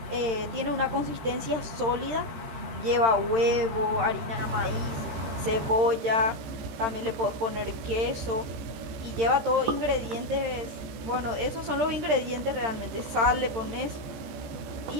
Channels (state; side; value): late; left; 13 ms